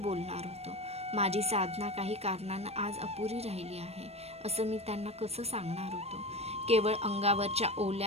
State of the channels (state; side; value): late; left; 0.30 ms